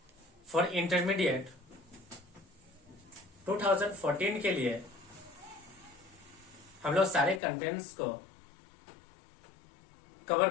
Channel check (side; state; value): right; drops out; at 7.4 s